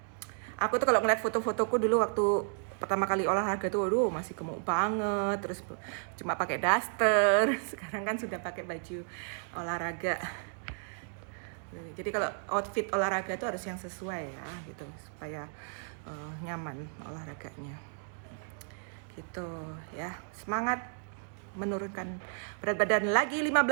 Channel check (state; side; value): silent; left; 56 dB below the other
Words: Aku tuh kalau ngeliat foto-fotoku dulu waktu pertama kali olahraga tuh, aduh masih gemuk banget, terus cuma pakai daster. Sekarang kan sudah pakai baju olahraga. Jadi kalau outfit olahraga itu harus yang sesuai ya, gitu, supaya nyaman olahraganya. Gitu ya, semangat menurunkan berat badan lagi